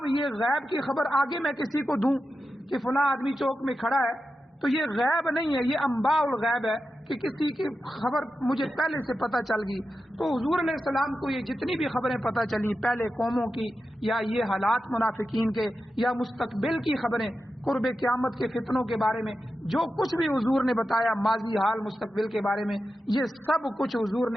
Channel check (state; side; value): normal; both; correlation 0.91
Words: یہ غیب کی خبر آگے میں کسی کو دوں کہ فلاں آدمی چوک میں کھڑا ہے، تو یہ غیب نہیں ہے، یہ انباء الغیب ہے کہ کسی کی خبر مجھے پہلے سے پتہ چل گئی۔ تو حضور علیہ السلام کو یہ جتنی بھی خبریں پتہ چلی پہلے قوموں کی، یا یہ حالات منافقین کے، یا مستقبل کی خبریں، قرب قیامت کے فتنوں کے بارے میں جو کچھ بھی حضور نے بتایا، ماضی حال مستقبل کے بارے میں، یہ سب کچھ حضور